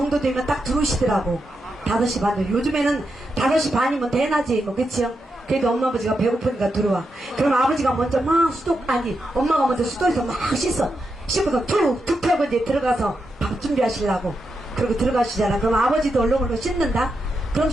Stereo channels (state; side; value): normal; both; correlation 0.85